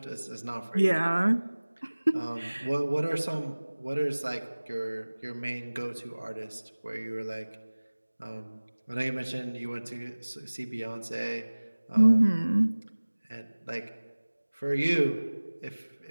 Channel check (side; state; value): both; inverted; correlation -1.00